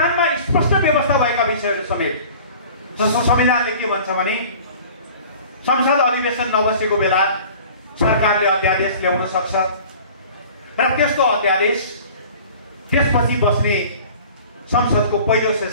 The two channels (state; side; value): inverted; both; correlation -0.45